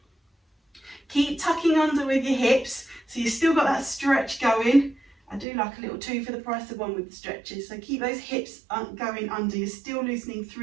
Keep tucking under with your hips so you've still got that stretch going. I do like a little 2 for the price of 1 with the stretches. So keep those hips going under. You're still loosening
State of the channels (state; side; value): drops out; left; at 5.5 s